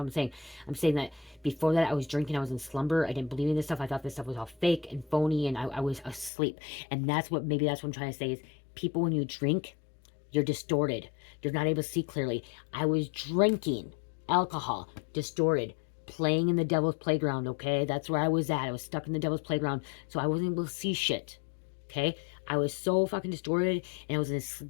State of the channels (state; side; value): drops out; right; at 6.3 s